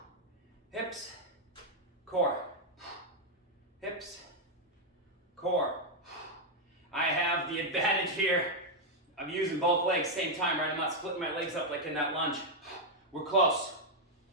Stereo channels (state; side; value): normal; both; correlation 0.00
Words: Hips, core. Hips, core. I have the advantage here. I'm using both legs same time, right? I'm not splitting my legs up like in that lunge. We're close.